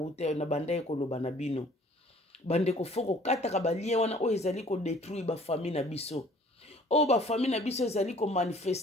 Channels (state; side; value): normal; both; correlation 0.54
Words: na banda koloba na bino. Bande ko foko kata ka ba lien wana o ezali ko détruire ba famille na biso. O ba famille na biso ezali ko